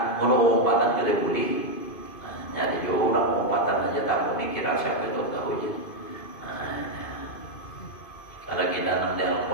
mengumpatan tidak boleh. Nah, jadi orang mengumpatan aja tak boleh kira siapa itu tahu aja. Nah, kalau kita nanti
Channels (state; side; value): late; right; 2.5 ms